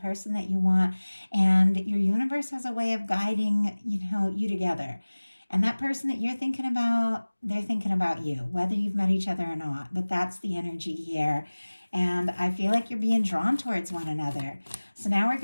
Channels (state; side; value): inverted; both; correlation -1.00